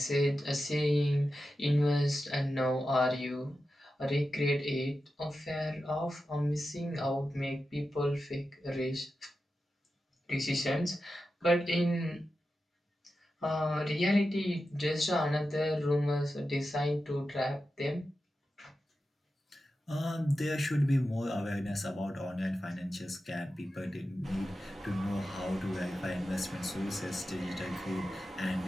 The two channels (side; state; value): both; normal; correlation 0.91